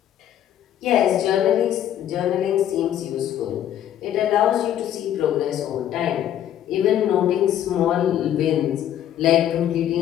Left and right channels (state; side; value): quieter; right; 10.9 dB